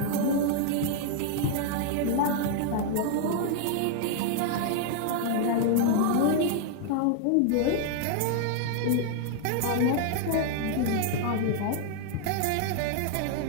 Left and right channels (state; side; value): different; both; correlation 0.00